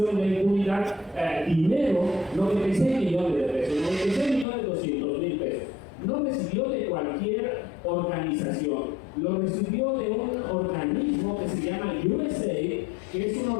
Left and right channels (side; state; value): right; drops out; at 4.5 s